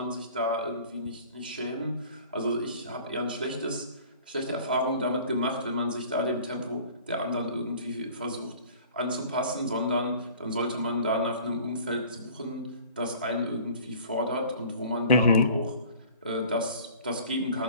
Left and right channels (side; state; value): both; inverted; correlation -0.48